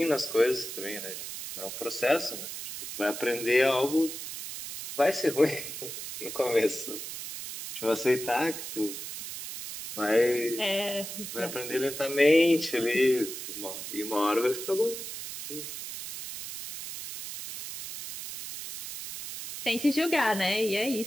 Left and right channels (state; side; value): noise; right; hiss, 8 dB below the sound